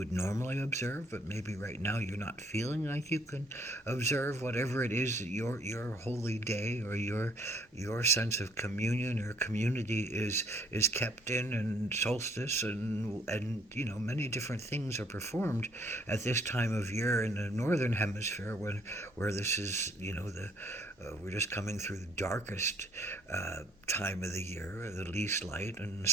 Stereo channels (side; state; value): both; normal; correlation 0.63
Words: normally observe, but maybe right now you're not feeling like you can observe whatever it is that your holy day or your sense of communion or community is kept in, and solstice and many different things are performed at this time of year in the northern hemisphere when where this is the we're just coming through the darkest time of the year, the least light, in the